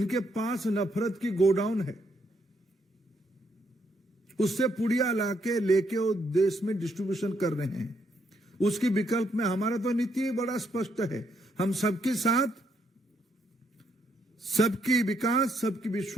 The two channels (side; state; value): both; normal; correlation 0.75